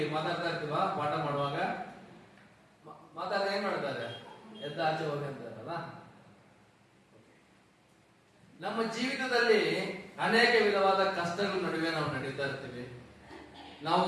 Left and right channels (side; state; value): both; identical; correlation 1.00